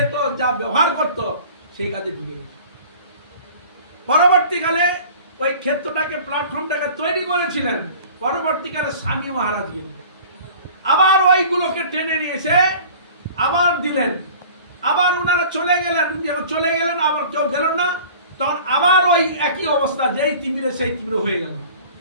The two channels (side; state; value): both; inverted; correlation -0.44